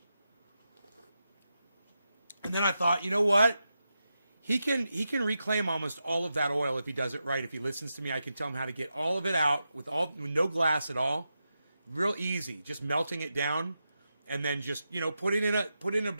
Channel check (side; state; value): both; inverted; correlation -0.88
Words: And then I thought, you know what? He can reclaim almost all of that oil if he does it right. If he listens to me, I can tell him how to get all of it out with no glass at all. Real easy. Just melting it down. And then just, put it in a